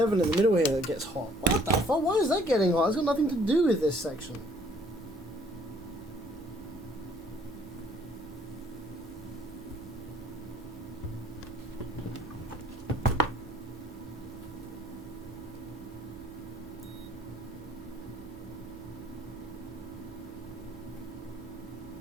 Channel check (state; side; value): normal; both; correlation 0.60